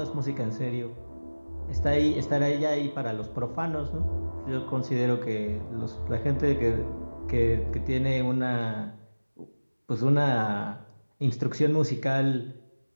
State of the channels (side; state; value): both; inverted; correlation -1.00